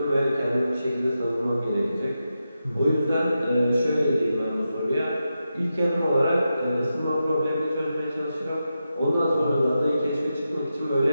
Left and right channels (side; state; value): both; inverted; correlation -0.89